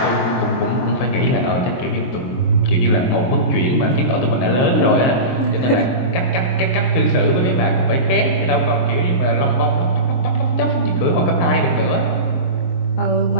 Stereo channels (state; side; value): late; right; 23 ms